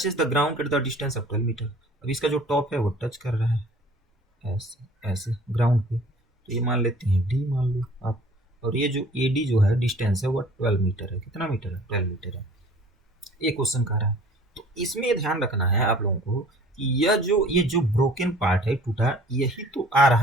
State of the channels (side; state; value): both; normal; correlation 0.50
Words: the ground at the distance of 12 metre. अब इसका जो टॉप है वो टच कर रहा है ऐसे ऐसे ग्राउंड पे, तो ये मान लेते हैं डी मान लो आप। और ये जो ए डी जो है डिस्टेंस है वो 12 मीटर है। कितना मीटर है? 12 मीटर है। ये क्वेश्चन कह रहा है। तो इसमें ये ध्यान रखना है आप लोगों को कि ये जो ब्रोकन पार्ट है, टूटा, यही तो आ रहा